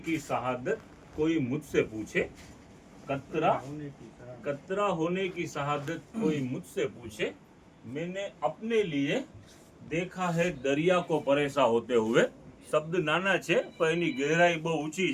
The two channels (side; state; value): both; identical; correlation 1.00